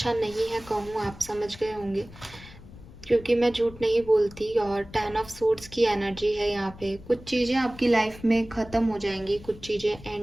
नहीं है कहूँ, आप समझ गए होंगे, क्योंकि मैं झूठ नहीं बोलती। और 10 ऑफ सोर्ड्स की एनर्जी है यहाँ पे। कुछ चीज़ें आपकी लाइफ में ख़त्म हो जाएंगी, कुछ चीज़ें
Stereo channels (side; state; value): left; noise; rumble, 18 dB below the sound